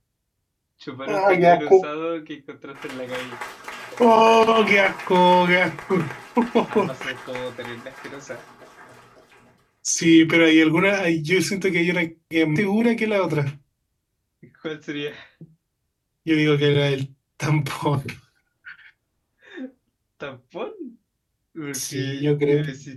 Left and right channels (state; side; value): identical; both; correlation 1.00